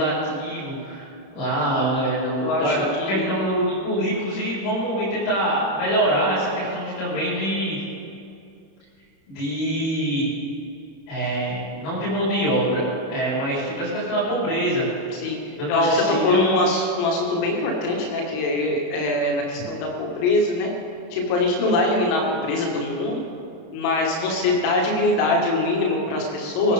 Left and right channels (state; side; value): late; right; 31 ms